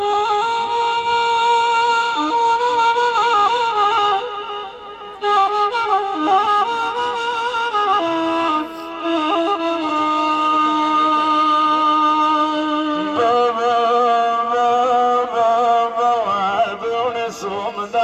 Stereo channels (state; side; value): identical; both; correlation 1.00